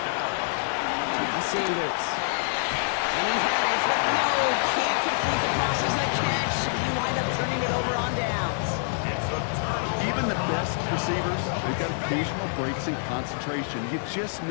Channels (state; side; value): silent; right; digital silence